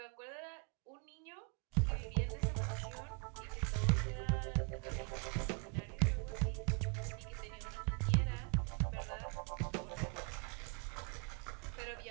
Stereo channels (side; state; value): left; quieter; 35.8 dB